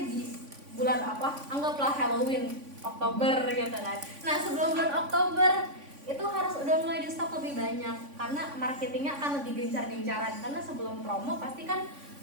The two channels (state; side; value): late; left; 3.5 ms